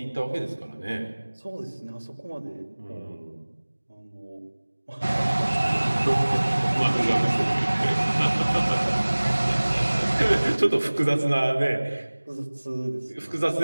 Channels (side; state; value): both; inverted; correlation -1.00